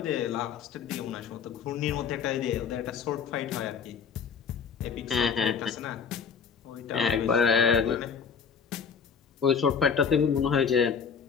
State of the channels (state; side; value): quieter; right; 6.4 dB